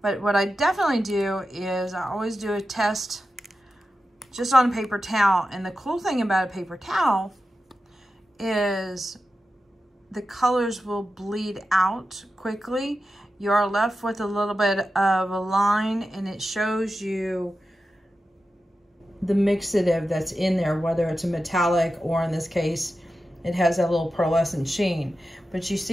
But what I definitely do is I always do a test just on a paper towel. And the cool thing about a paper towel is the colors will bleed out quickly. You are left with a little bit of a line and it shows you the mixative that's in there, whether it's a metallic or in this case, it has that little pearlescent sheen. But you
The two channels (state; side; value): normal; both; correlation 0.91